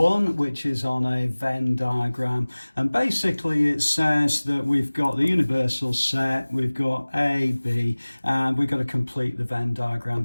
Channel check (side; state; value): both; inverted; correlation -1.00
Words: which is on a Venn diagram, and basically it says that we've got the universal set, we've got A, B, and we've got to complete the Venn diagram